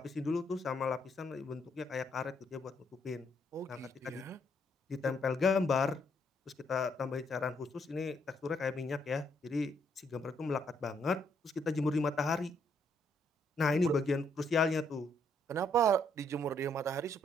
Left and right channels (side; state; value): both; normal; correlation 0.71